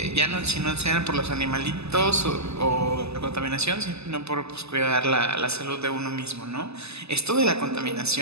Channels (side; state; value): left; late; 0.79 ms